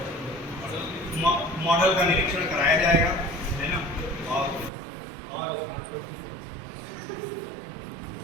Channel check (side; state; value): left; drops out; at 4.7 s